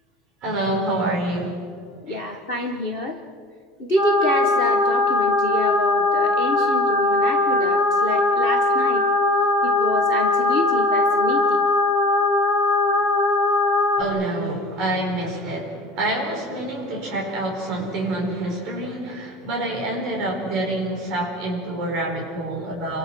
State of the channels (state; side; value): normal; both; correlation 0.40